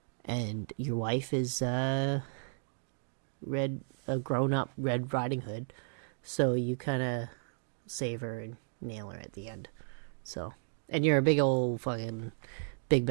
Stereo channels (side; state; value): left; silent; digital silence